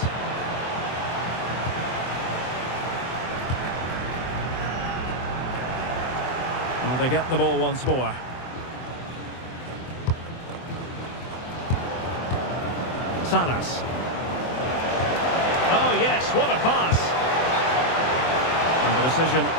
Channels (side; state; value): right; late; 24 ms